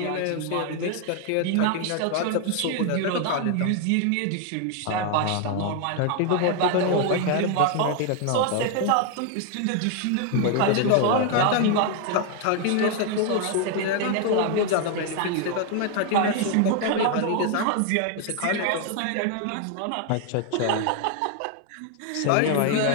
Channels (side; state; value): both; different; correlation 0.00